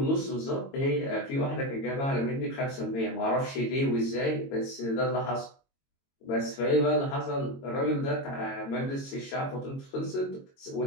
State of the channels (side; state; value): right; late; 22 ms